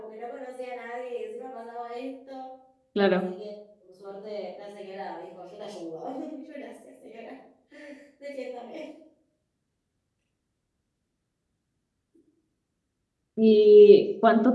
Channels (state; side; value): identical; both; correlation 1.00